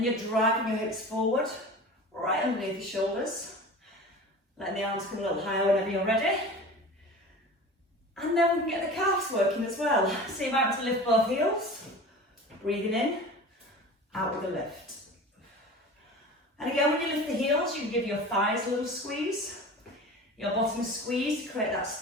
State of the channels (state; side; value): normal; both; correlation 0.36